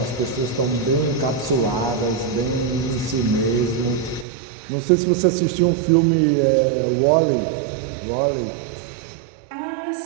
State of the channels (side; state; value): left; drops out; at 4.2 s